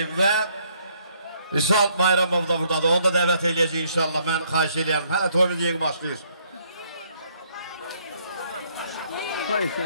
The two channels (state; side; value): inverted; both; correlation -0.67